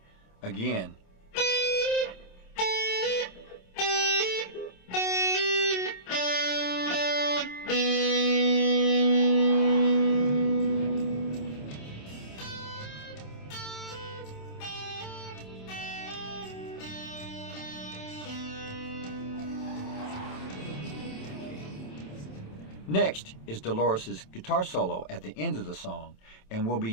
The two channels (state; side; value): late; right; 27 ms